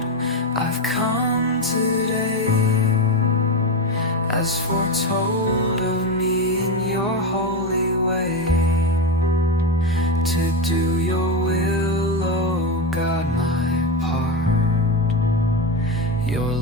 I've come today, as foretold of me in your holy way, to do your will, O God, my part. Your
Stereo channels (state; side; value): normal; both; correlation 0.15